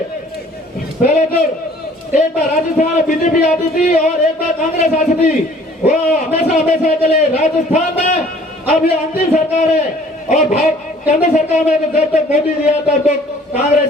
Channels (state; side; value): normal; both; correlation 0.54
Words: तो एक बार राजस्थान में बीजेपी आती थी और एक बार कांग्रेस आती थी, वो हमेशा के लिए राजस्थान में अब ये अंतिम सरकार है। और केंद्र सरकार में तो जब तक मोदी जी आता तो कांग्रेस